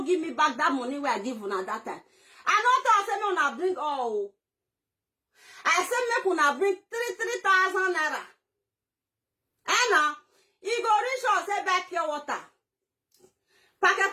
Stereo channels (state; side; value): identical; both; correlation 1.00